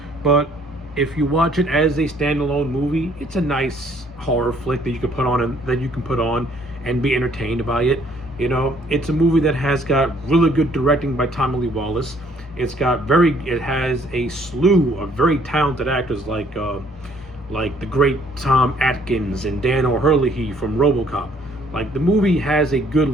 But if you watch it as a standalone movie, it's a nice horror flick that you can put on and be entertained by it. It's a movie that has got really good directing by Tommy Lee Wallace. It has a slew of very talented actors like the great Tom Atkins and Dan O'Herlihy from RoboCop. Like, the movie has a good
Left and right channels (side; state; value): both; normal; correlation 0.62